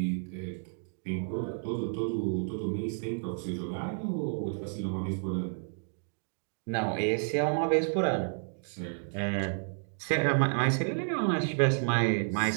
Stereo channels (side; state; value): left; silent; 57 dB below the other